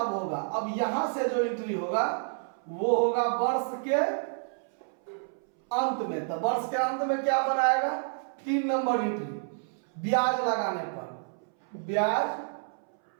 होगा। अब यहां से जो एंट्री होगा वो होगा वर्ष के अंत में। तो वर्ष के अंत में क्या बनाएगा, 3 नंबर एंट्री, ब्याज लगाने पर, ब्याज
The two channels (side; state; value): left; silent; 58 dB below the other